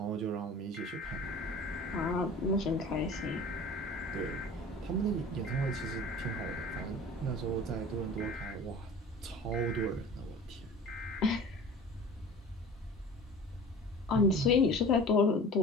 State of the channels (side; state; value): both; normal; correlation 0.41